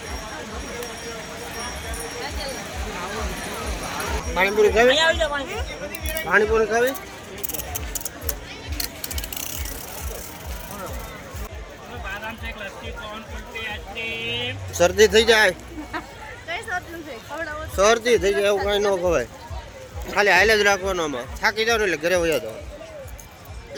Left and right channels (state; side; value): identical; both; correlation 1.00